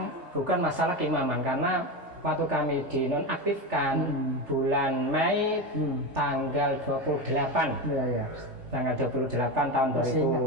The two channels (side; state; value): left; late; 3.4 ms